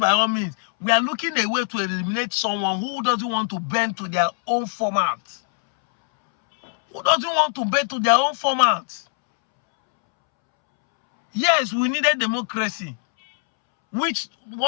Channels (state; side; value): silent; right; 64 dB below the other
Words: all means, we are looking a way to eliminate someone who doesn't want to bend to their own format. Who doesn't want to bend to their own format? Yes, we needed democracy. Which